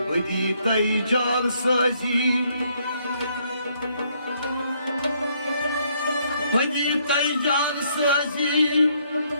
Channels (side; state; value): both; inverted; correlation -0.70